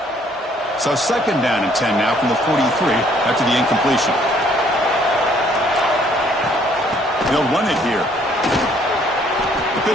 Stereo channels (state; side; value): normal; both; correlation 0.63